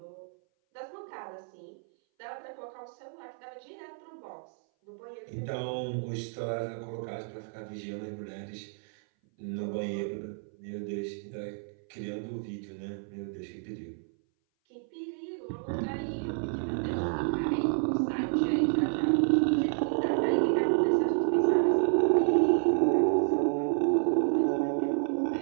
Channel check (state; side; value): silent; left; 58 dB below the other